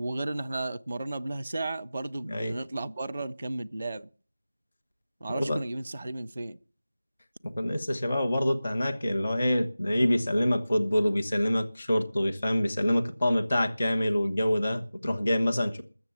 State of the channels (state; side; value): inverted; both; correlation -0.96